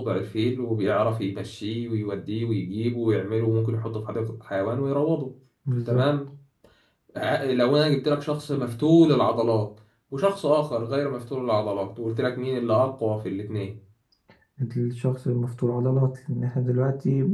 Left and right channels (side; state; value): both; identical; correlation 1.00